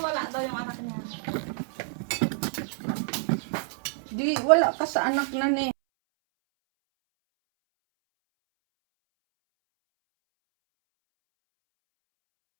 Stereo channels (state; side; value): silent; left; 60 dB below the other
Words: daw yung anak niya. Di, wala ka sa anak na ni.